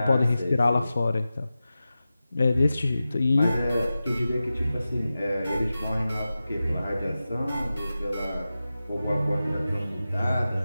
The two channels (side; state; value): both; inverted; correlation -0.94